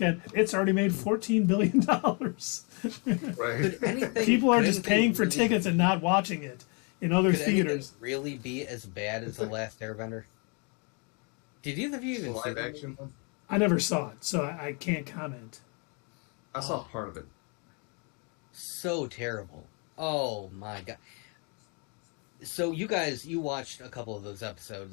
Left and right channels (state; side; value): quieter; right; 35.0 dB